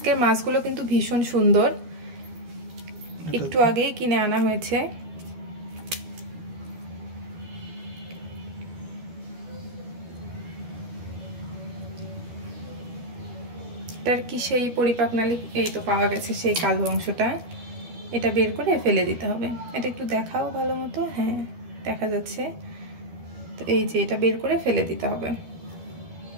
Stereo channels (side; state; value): left; late; 12 ms